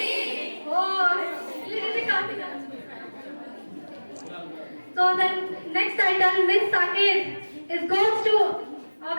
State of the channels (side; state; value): both; inverted; correlation -1.00